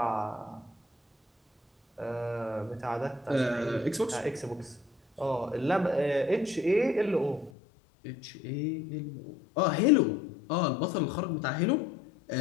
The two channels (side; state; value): right; drops out; at 7.5 s